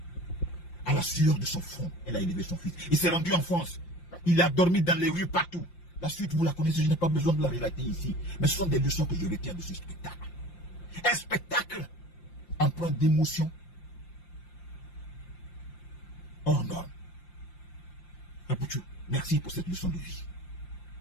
À la sueur de son front, elle a élevé son fils. Il s'est rendu en France. Il a dormi dans les rues partout. La suite, vous la connaissez, je n'ai pas besoin de la relater ici. Mais ce sont des leçons que je retiens de ce spectacle. Un spectacle empreint d'émotion. Oh non. Apoutou, merci pour cette leçon de vie.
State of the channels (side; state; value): right; late; 5.7 ms